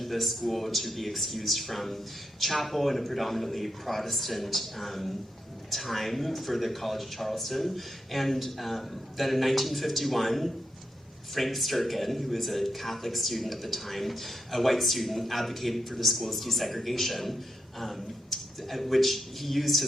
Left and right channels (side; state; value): both; normal; correlation 0.83